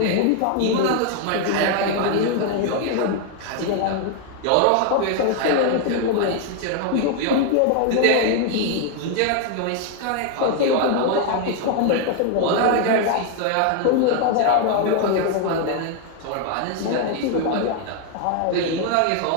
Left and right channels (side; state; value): both; different; correlation 0.01